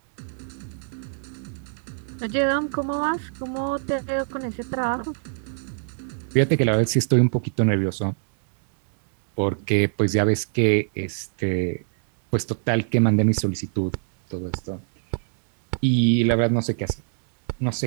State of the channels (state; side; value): silent; left; digital silence